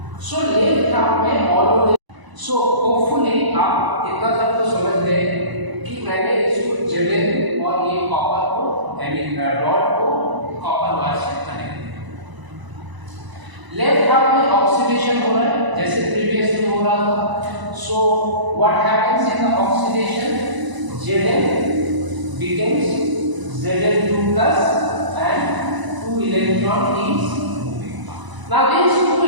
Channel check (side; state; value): left; late; 1.0 ms